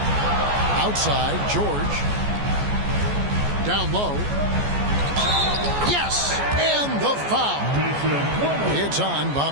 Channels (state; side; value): late; left; 14 ms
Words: Outside, George. Down low. Yes! And the foul. It's on